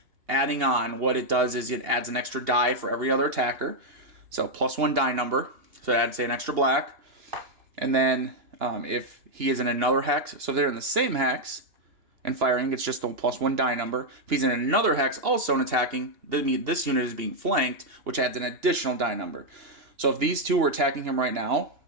adding on, what it does is it adds an extra die for every other attacker, so +1 die number, so it adds, say, an extra black. And then if he is in another hex, so if they're in the same hex and firing, it's just the +1 die number. If he's in another hex also and attacking, this unit is being flanked, which adds an additional die number. So if these two were attacking him right now,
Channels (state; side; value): late; left; 2.8 ms